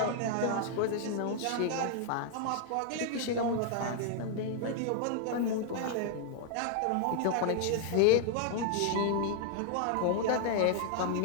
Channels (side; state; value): both; different; correlation 0.00